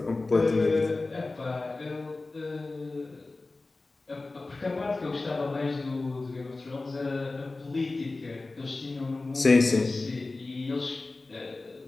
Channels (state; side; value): quieter; right; 3.3 dB